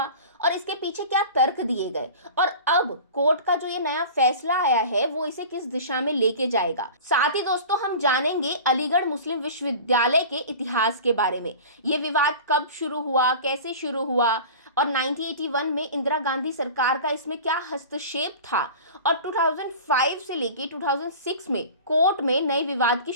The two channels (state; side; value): inverted; both; correlation -0.37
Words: और इसके पीछे क्या तर्क दिए गए, और अब कोर्ट का जो ये नया फैसला आया है वो इसे किस दिशा में लेके जाएगा। साथ ही दोस्तों, हम जानेंगे अलीगढ़ मुस्लिम विश्वविद्यालय के इतिहास के बारे में। ये विवाद कब शुरू हुआ, कैसे शुरू हुआ और 1981 में इंदिरा गांधी सरकार का इसमें क्या हस्तक्षेप था, और 2005 से लेके 2006 में कोर्ट में नए विवाद की